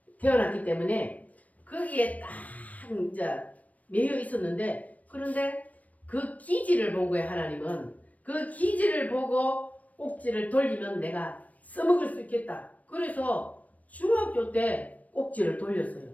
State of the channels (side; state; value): right; late; 0.071 ms